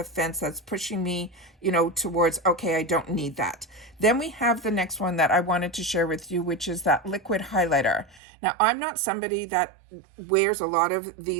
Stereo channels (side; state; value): left; drops out; at 8.2 s